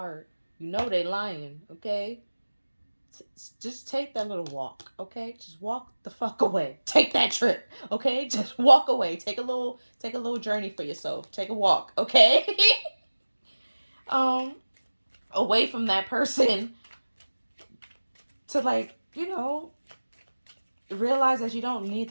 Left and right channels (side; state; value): both; inverted; correlation -1.00